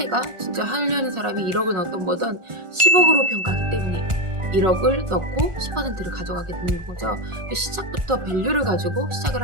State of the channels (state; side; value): late; left; 1.4 ms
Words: 진짜 하려는 사람이 1억을 넣었던 거든 10억으로 평가하기 때문에 1억을 넣고 10%를 가져가게 되는 거죠. 시작부터 밸류를 가지고 시작을